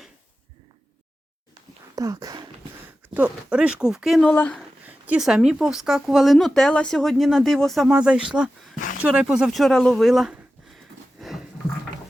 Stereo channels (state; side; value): normal; both; correlation 0.94